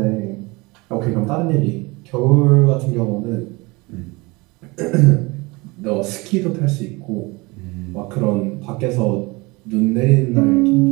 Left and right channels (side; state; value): left; quieter; 24.7 dB